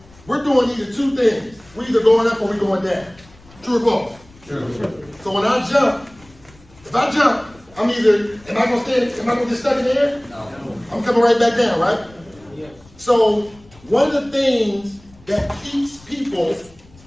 we're doing either two things. We're either going up or we're going down. True or false? True. So when I jump, if I jump, am I going to get stuck in the air? No. I'm coming right back down, right? Yes. So one of the things that keeps people,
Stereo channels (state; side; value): noise; left; rumble, 26 dB below the sound